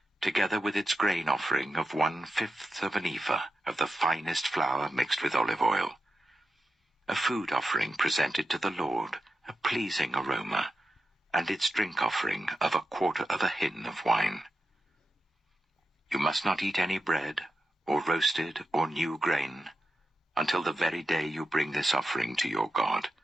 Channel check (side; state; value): both; normal; correlation 0.89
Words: together with its grain offering of 1/5 of an ephah of the finest flour mixed with olive oil. A food offering presented to the Lord, a pleasing aroma, and its drink offering of 1/4 of a hin of wine. You must not eat any bread, or roasted or new grain, until the very day you bring this offering to your God.